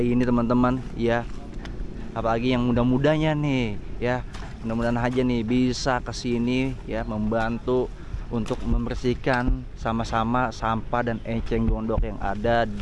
ini teman-teman ya. Apalagi yang muda-mudanya nih ya, mudah-mudahan aja nih bisa kesini ya, membantu untuk membersihkan sama-sama sampah dan eceng gondok yang ada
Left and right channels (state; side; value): identical; both; correlation 1.00